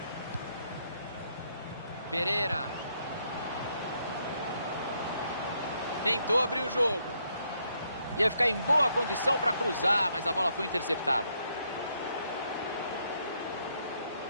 Pereira. Tentou abrir o jogo. Ia ficar em boa condição para cruzar, mas a bola foi interceptada.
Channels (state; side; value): inverted; both; correlation -0.74